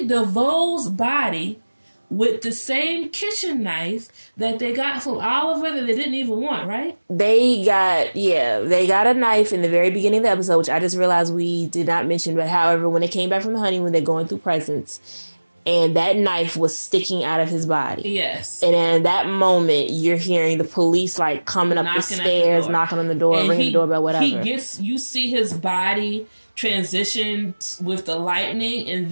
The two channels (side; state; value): both; inverted; correlation -1.00